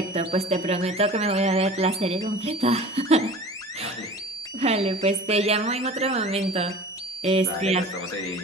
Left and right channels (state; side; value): normal; both; correlation 0.40